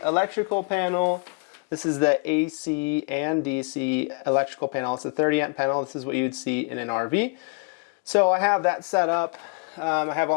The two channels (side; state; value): right; quieter; 33.3 dB